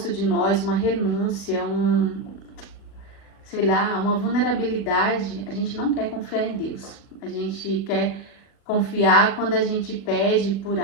de nós, uma renúncia, sei lá, uma vulnerabilidade, a gente não quer confiar em Deus. A gente quer confiar quando a gente pede por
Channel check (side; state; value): right; late; 39 ms